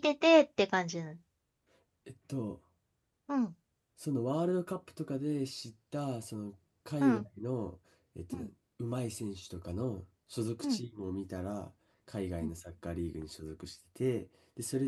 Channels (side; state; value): both; identical; correlation 1.00